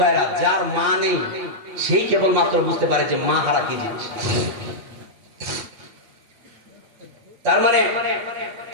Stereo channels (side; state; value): left; late; 8.3 ms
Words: ভাইরা, যার মা নেই সেই কেবলমাত্র বুঝতে পারে যে মা হারা কি জিনিস। তার মানে